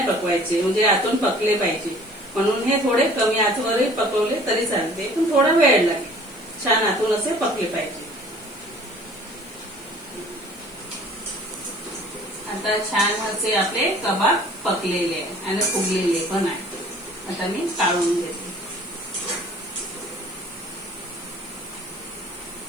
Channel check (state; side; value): noise; left; hiss, 25 dB below the sound